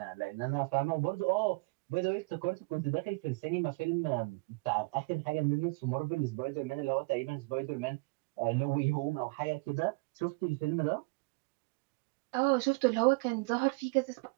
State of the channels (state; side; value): quieter; left; 28.0 dB